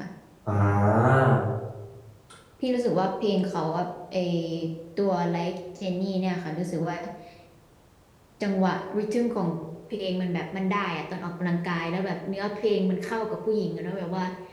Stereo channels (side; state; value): both; identical; correlation 1.00